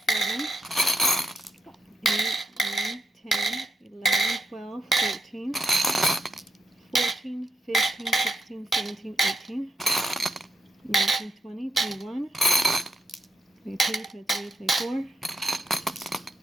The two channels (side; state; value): both; normal; correlation 0.78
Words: 7, 8, 9, 10, 11, 12, 13, 14, 15, 16, 17, 18, 19, 20, 21, 22, 23, 24,